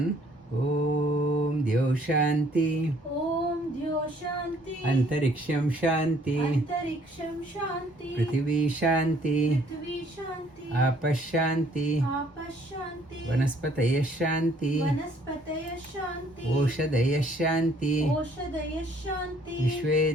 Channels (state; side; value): normal; both; correlation 0.62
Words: Om Dyo Shanti, Om Dyo Shanti, Antariksham Shanti, Antariksham Shanti, Prithvi Shanti, Prithvi Shanti, Apash Shanti, Apash Shanti, Vanaspataya Shanti, Vanaspataya Shanti, Oshadaya Shanti, Oshadaya Shanti,